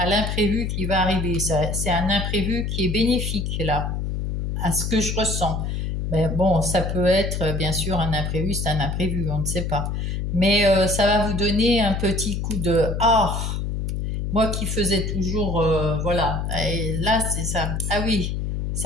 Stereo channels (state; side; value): noise; left; hum, 2 dB below the sound